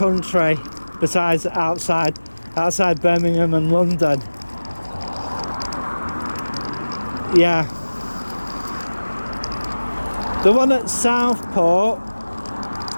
besides outside Birmingham and London. Yeah. The one at Southport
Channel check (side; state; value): both; inverted; correlation -1.00